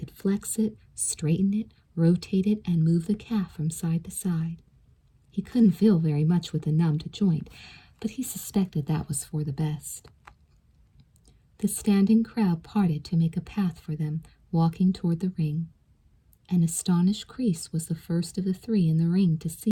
flex it, straighten it, rotate it, and move the calf from side to side. He couldn't feel very much with the numbed joint, but he suspected that was for the best. The standing crowd parted to make a path for them, walking toward the ring. An astonished Kreese was the first of the three in the ring to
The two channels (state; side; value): identical; both; correlation 1.00